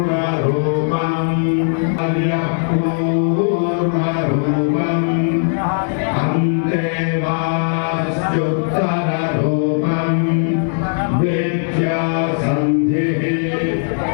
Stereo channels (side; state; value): right; silent; digital silence